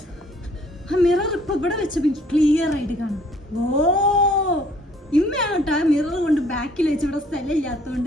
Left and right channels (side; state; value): both; normal; correlation 0.60